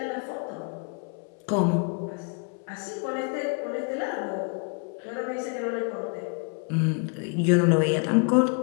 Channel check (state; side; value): quieter; right; 36.8 dB